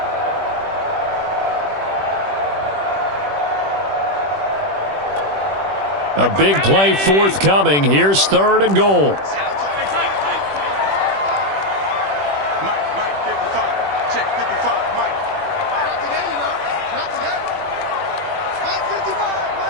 A big play forthcoming. Here's 3rd and goal. Mike, 55. Check 55, Mike. Not today, you know. Not today. Mike 55,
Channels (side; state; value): left; late; 21 ms